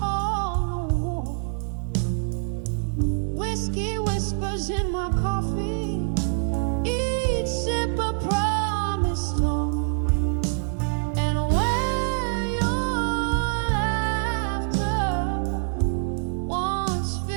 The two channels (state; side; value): silent; left; 62 dB below the other